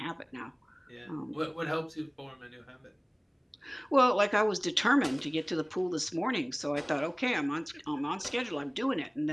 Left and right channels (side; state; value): both; identical; correlation 1.00